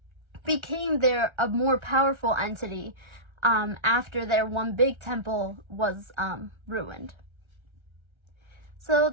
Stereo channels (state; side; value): late; left; 1.3 ms